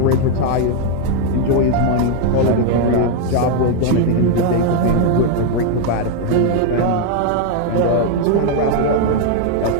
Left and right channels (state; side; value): different; both; correlation 0.00